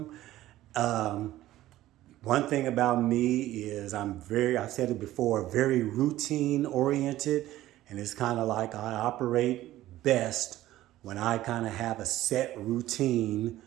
Um, One thing about me is I've said it before, very routine oriented. And it's kind of like I operate best when I kind of have a set routine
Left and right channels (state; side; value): quieter; left; 15.0 dB